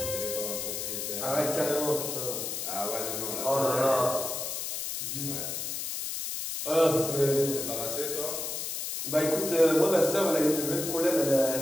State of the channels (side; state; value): left; noise; hiss, 4 dB below the sound